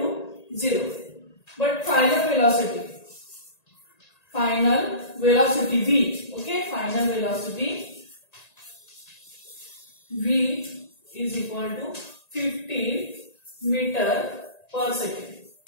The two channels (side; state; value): right; late; 1.9 ms